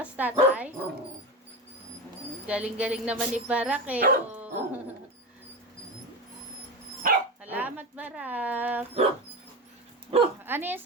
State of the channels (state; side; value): normal; both; correlation 0.22